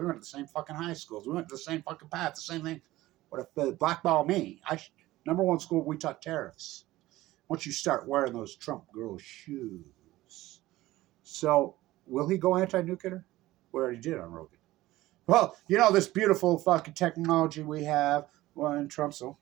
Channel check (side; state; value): left; quieter; 17.0 dB